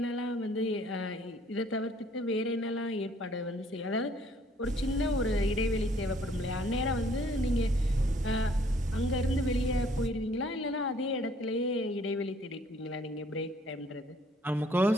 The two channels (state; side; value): normal; both; correlation 0.61